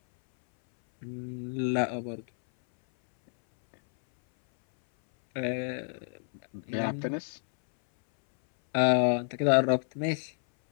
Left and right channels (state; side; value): silent; right; 58 dB below the other